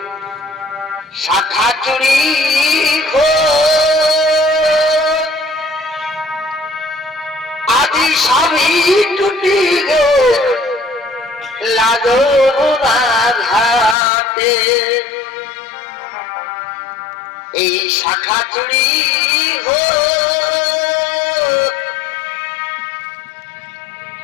শাখা চুরি আজি সবই টুটি গে লাগোরা ঘাটে এই শাখা চুরি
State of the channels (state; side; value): drops out; right; at 14.0 s